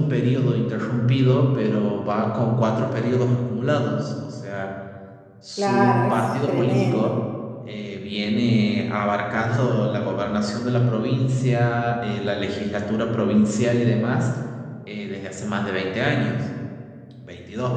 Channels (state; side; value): identical; both; correlation 1.00